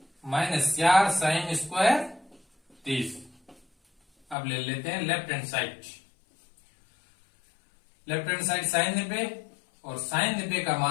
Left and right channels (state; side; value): drops out; right; at 4.4 s